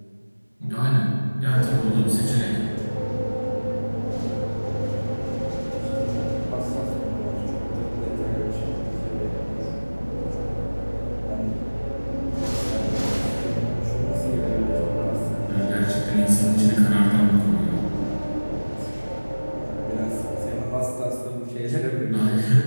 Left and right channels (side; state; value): both; inverted; correlation -1.00